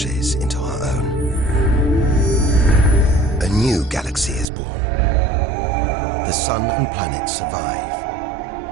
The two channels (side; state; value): left; drops out; at 4.5 s